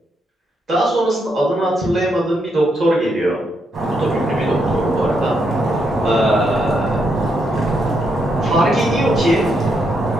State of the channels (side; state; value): both; normal; correlation 0.79